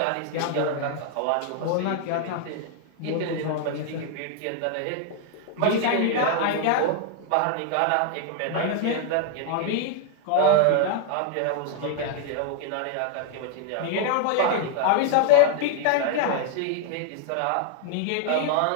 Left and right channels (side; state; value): both; different; correlation -0.01